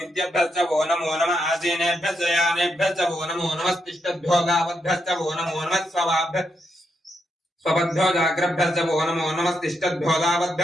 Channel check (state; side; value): normal; both; correlation 0.82